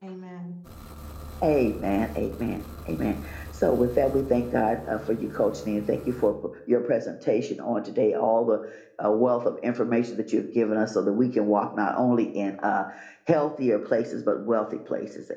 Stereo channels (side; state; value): both; identical; correlation 1.00